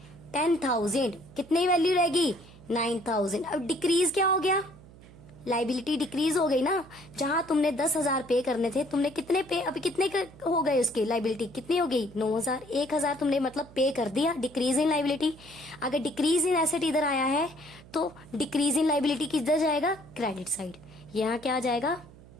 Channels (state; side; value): noise; right; hum, 21 dB below the sound